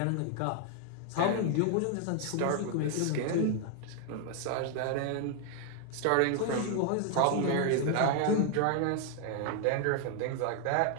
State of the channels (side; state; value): both; different; correlation 0.00